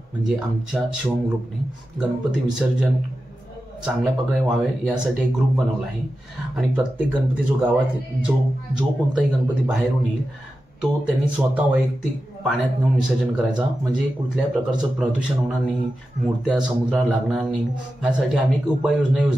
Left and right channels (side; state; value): both; normal; correlation 0.92